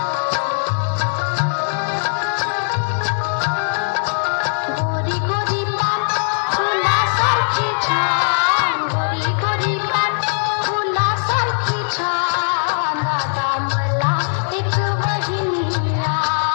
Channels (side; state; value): right; silent; 66 dB below the other